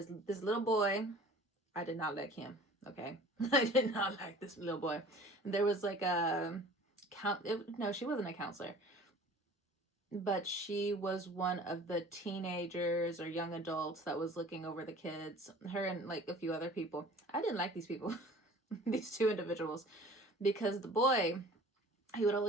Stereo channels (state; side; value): normal; both; correlation 0.46